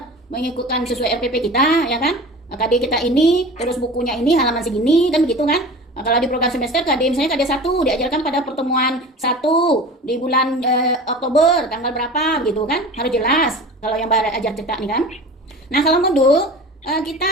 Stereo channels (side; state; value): both; normal; correlation 0.37